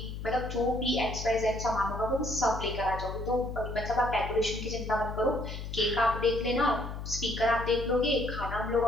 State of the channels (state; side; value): noise; left; hum, 7 dB below the sound